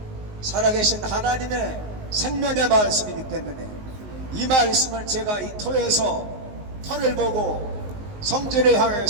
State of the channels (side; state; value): left; late; 19 ms